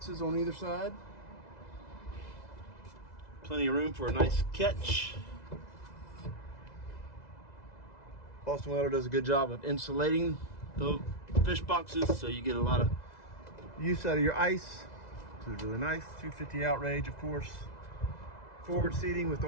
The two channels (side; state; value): right; late; 2.0 ms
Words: on either side. Plenty of room for a nice catch. Boston Whaler does a good job of insulating the fish boxes, so you get a lot of use out of your ice, which is really nice. 250 Outrage, of course. Forward seating with